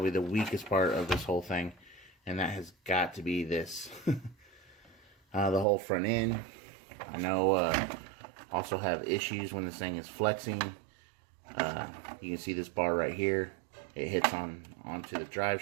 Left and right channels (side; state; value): left; drops out; at 5.7 s